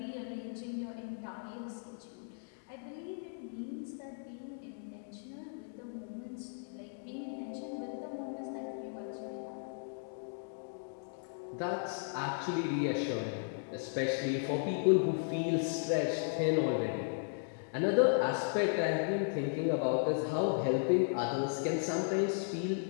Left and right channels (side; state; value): right; silent; digital silence